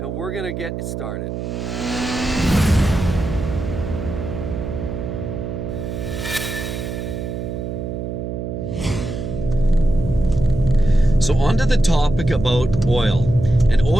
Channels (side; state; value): right; noise; hum, 5 dB below the sound